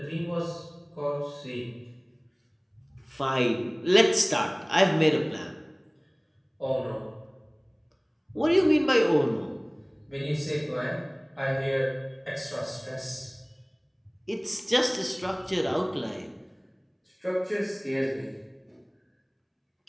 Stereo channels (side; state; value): both; identical; correlation 1.00